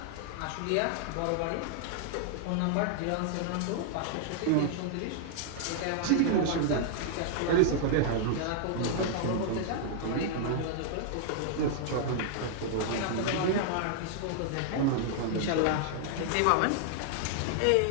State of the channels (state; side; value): different; both; correlation -0.01